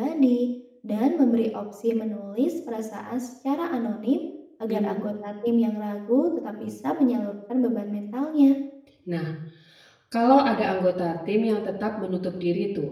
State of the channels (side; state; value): both; identical; correlation 1.00